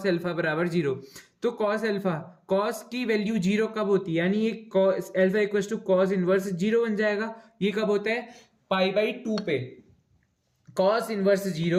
अल्फा बराबर जीरो। तो कॉस अल्फा, कॉस की वैल्यू जीरो कब होती है, यानी ये cos alpha equal to cos inverse zero बन जाएगा। ये कब होता है, पाई बाई टू पे। कॉस इनवर्स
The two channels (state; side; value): identical; both; correlation 1.00